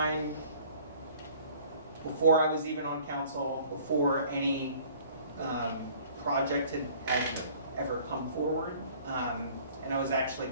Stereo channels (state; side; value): inverted; both; correlation -0.53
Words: before I was even on council, before any project had ever come forward. And I was actually